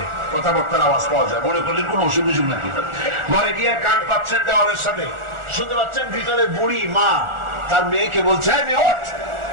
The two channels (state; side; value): late; left; 1.4 ms